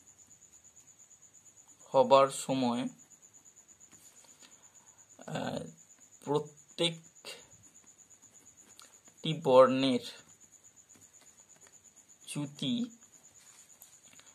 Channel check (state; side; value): identical; both; correlation 1.00